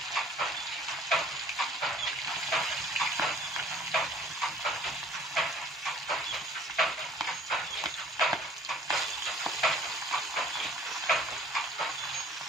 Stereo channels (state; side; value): normal; both; correlation 0.53